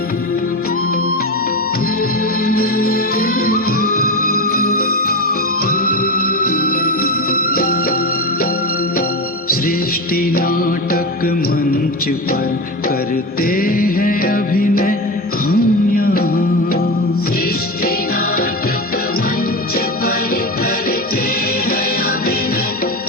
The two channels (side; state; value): both; normal; correlation 0.20